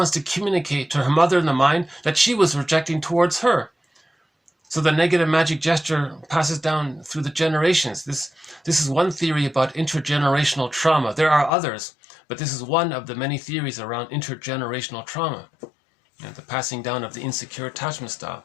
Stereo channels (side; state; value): right; drops out; at 11.5 s